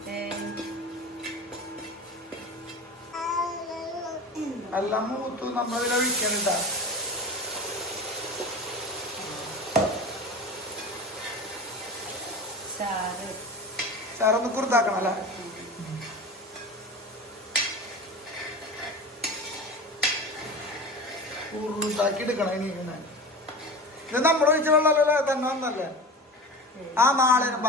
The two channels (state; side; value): normal; both; correlation 0.31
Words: എല്ലാം മൂത്തു നമ്മളിതിനെ ഒഴിക്കണ്ട. ചാറൊന്ന് കുറുതാക്കണം അല്ലേ? കുറുതാക്കി എടുക്കണം. ഇനി ഇത് നമ്മൾ ഒഴിച്ച വെള്ളമല്ലേ തന്നെ വന്നല്ലേ? ആ നാളെ